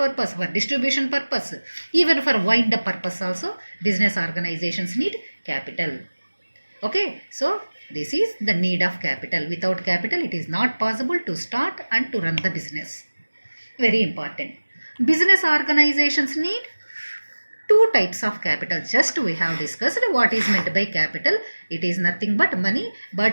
for distribution purpose, even for wind up purpose also, business organizations need capital. Okay, so this is the need of capital. Without capital, it is not possible to start and to run the business. Very important. Business organizations need two types of capital. Just we have discussed what is meant by capital. It is nothing but money,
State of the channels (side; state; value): both; inverted; correlation -1.00